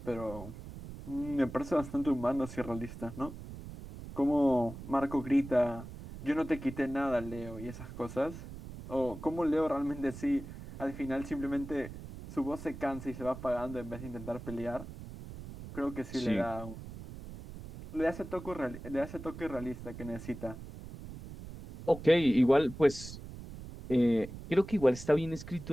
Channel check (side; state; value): right; noise; rumble, 12 dB below the sound